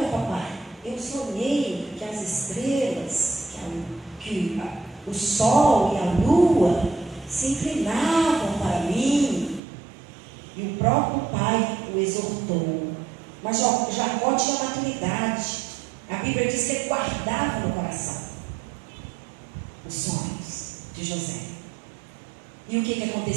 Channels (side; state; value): left; drops out; at 9.6 s